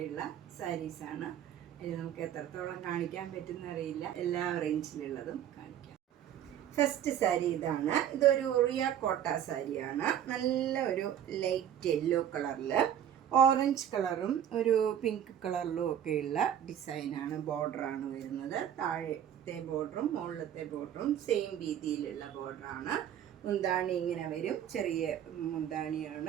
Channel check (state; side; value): quieter; left; 10.0 dB